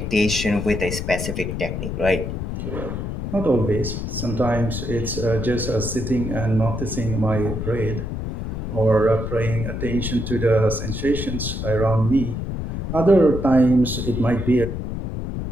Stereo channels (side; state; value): left; noise; rumble, 4 dB below the sound